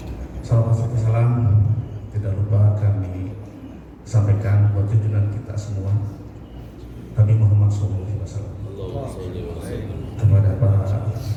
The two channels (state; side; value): identical; both; correlation 1.00